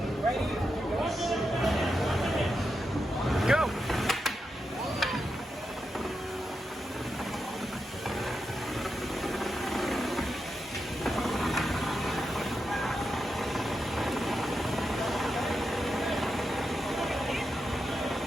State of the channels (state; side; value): normal; both; correlation 0.87